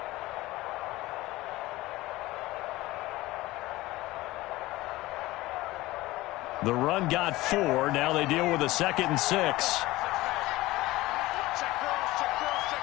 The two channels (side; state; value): right; quieter; 18.6 dB